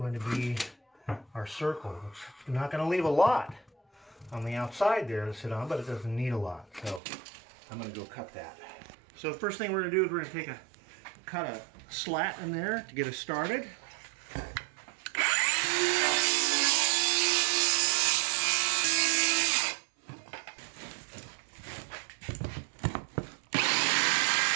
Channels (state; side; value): drops out; left; at 7.0 s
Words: to be our circle. It's not going to leave a lot on the outside there to sit on, but it doesn't need a lot. So I'm going to go cut that. So the first thing we're going to do is we're going to cut a slat in there to get us started.